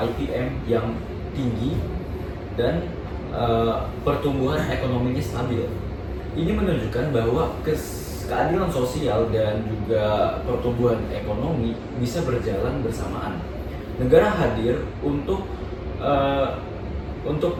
yang tinggi dan pertumbuhan ekonominya stabil. Ini menunjukkan bahwa keadilan sosial dan juga pertumbuhan ekonomi bisa berjalan bersamaan. Negara hadir untuk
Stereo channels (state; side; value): identical; both; correlation 1.00